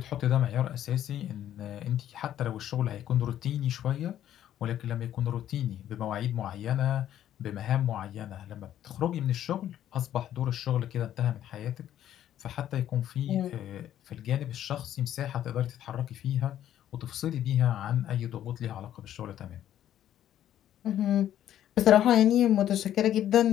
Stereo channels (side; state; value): right; quieter; 11.4 dB